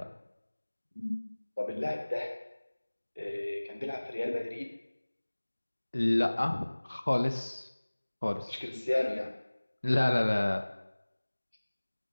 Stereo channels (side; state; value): both; inverted; correlation -1.00